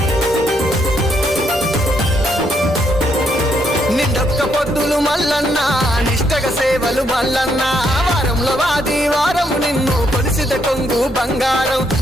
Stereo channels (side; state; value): both; normal; correlation 0.74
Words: నిండొక్క పొద్దులు మల్లన్న నిష్టగ సేవలు మల్లన్న వారంలో వాది వారము నిన్ను కొలిసిత కొంగు బంగారం